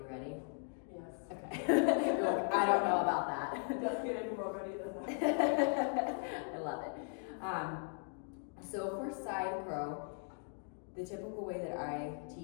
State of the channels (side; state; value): right; silent; 52 dB below the other